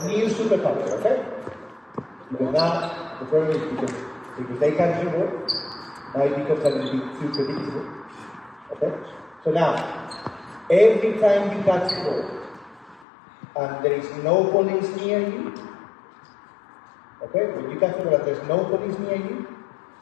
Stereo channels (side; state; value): right; drops out; at 13.1 s